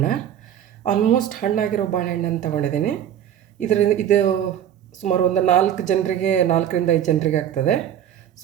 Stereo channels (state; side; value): quieter; left; 10.2 dB